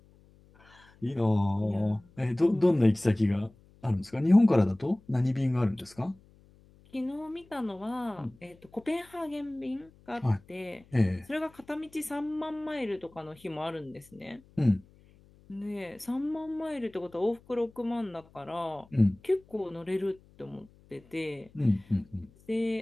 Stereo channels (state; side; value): noise; left; hum, 27 dB below the sound